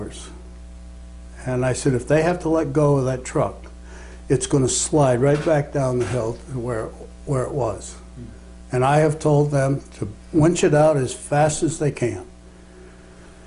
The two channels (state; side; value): identical; both; correlation 1.00